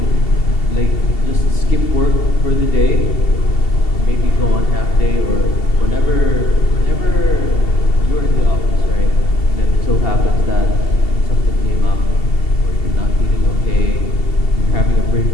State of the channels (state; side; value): late; right; 2.7 ms